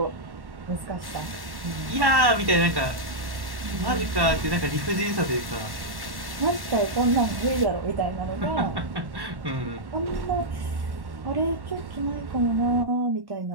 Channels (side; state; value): left; late; 1.1 ms